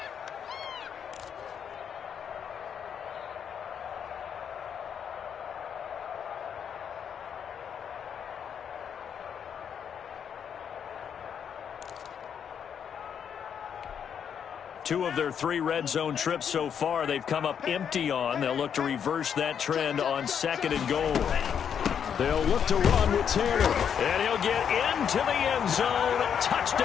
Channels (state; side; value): quieter; right; 8.0 dB